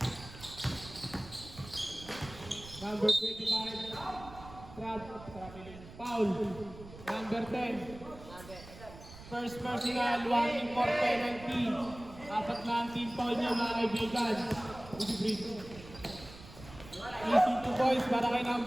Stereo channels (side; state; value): right; noise; rumble, 16 dB below the sound